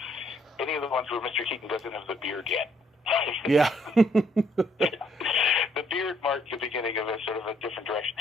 any of the ones where Mr. Keaton doesn't have the beard yet. Yeah. The beard marked the beginning of a sort of a different direction.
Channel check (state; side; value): normal; both; correlation 0.68